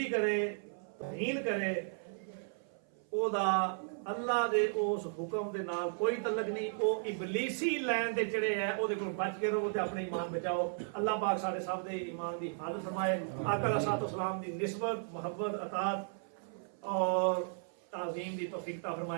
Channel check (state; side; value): silent; left; 54 dB below the other